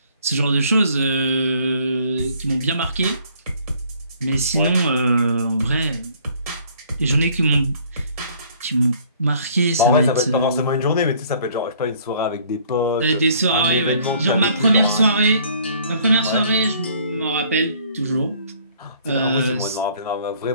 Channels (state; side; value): inverted; both; correlation -0.59